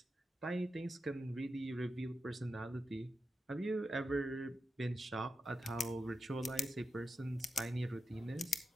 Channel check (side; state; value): both; normal; correlation 0.89